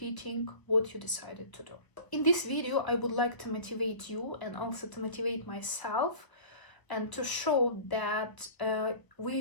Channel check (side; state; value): right; late; 1.0 ms